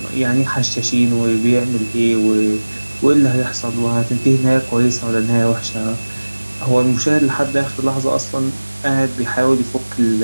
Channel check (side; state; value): both; inverted; correlation -1.00